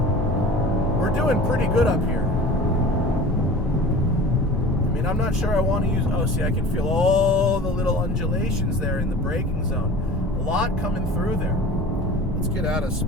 we're doing pretty good up here. I mean, I'm not sure I want to use... Oh, see, I can feel all the little undulations there in the braking zone. A lot coming through there. Let's get out of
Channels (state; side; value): normal; both; correlation 0.40